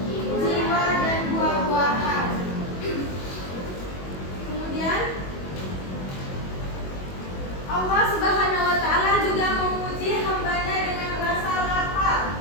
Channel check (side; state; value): right; late; 22 ms